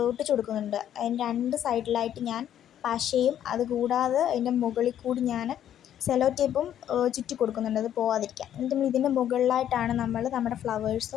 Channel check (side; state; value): right; quieter; 10.6 dB